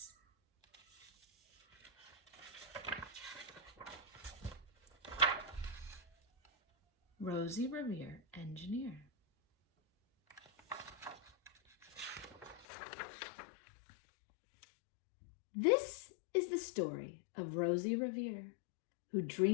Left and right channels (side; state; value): right; drops out; at 12.7 s